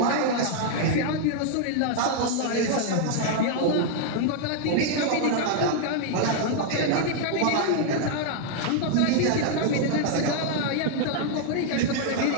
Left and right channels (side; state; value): both; different; correlation 0.00